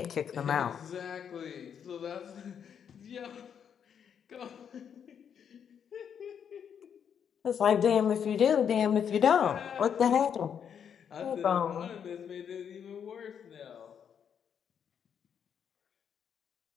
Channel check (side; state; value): right; quieter; 7.9 dB